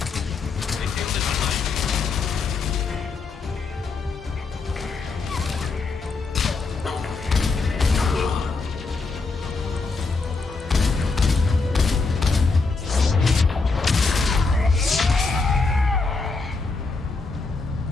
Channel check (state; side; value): quieter; right; 4.1 dB